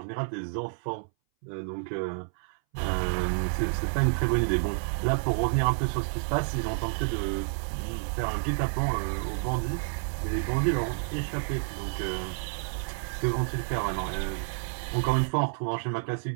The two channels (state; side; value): silent; left; 58 dB below the other